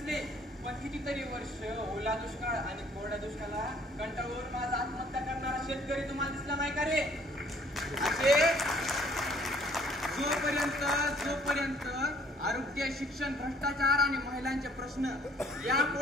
पण कितीतरी वर्ष ओला दुष्काळ आणि कोरड्या दुष्काळाला कंटाळून माझा आत्महत्या करणारा शेतकरी तुम्हाला दिसला नाही का रे? असे जोपर्यंत आरोग्य, शिक्षण, भ्रष्टाचार आणि महिलांचे प्रश्न या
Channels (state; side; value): normal; both; correlation 0.60